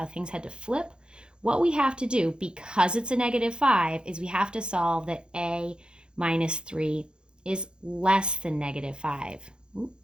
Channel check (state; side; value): late; left; 0.049 ms